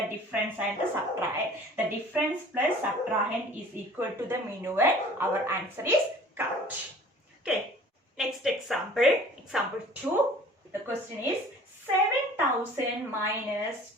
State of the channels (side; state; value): both; normal; correlation 0.48